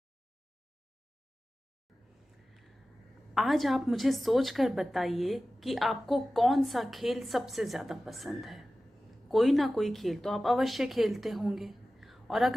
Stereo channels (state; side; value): normal; both; correlation 0.95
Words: आज आप मुझे सोचकर बताइए कि आपको कौन सा खेल सबसे ज़्यादा पसंद है। कोई ना कोई खेल तो आप अवश्य खेलते होंगे, और